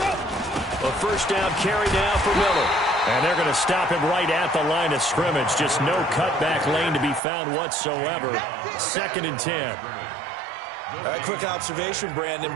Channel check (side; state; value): left; drops out; at 7.2 s